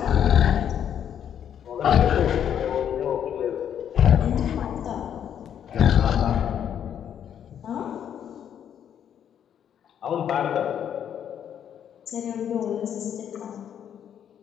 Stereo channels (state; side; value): quieter; right; 9.2 dB